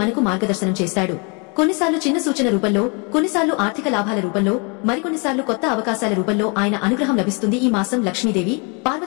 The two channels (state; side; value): quieter; right; 33.4 dB